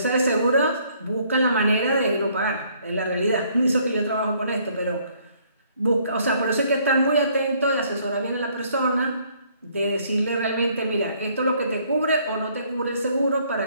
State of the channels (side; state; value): both; inverted; correlation -0.64